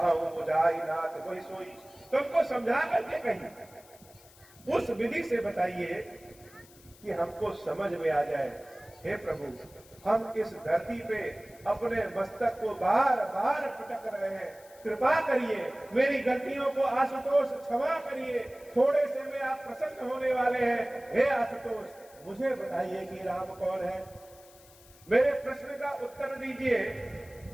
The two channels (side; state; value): left; noise; hiss, 24 dB below the sound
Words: मुझाई नाथ कोई सोई। तुमको समझा करके कहीं उस विधि से बताइए कि हमको समझ में आ जाए। हे प्रभु, हम इस धरती पे अपने मस्तक को बार बार पटक रहे हैं, कृपा करिए, मेरी गलतियों को आशुतोष क्षमा करिए, थोड़े से में आप प्रसन्न होने वाले हैं। हे आशुतोष, मुझे बताइए कि राम कौन है। मेरे प्रश्न का उत्तर दीजिए